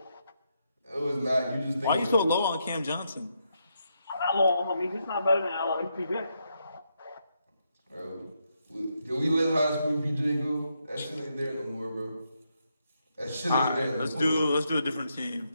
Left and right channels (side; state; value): both; inverted; correlation -0.80